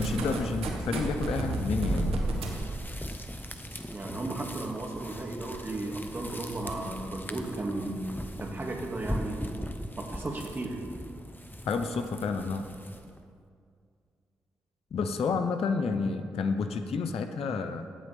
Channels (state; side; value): normal; both; correlation 0.78